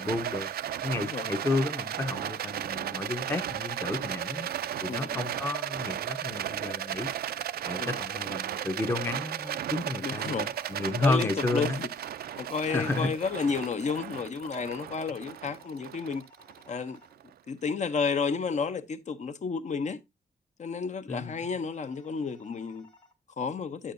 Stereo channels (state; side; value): normal; both; correlation 0.49